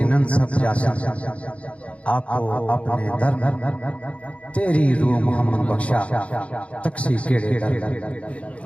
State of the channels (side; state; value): right; late; 0.063 ms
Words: سب جاسا آپ اپنے در، تیری روح محمد بخشا تکسی کیڑے در۔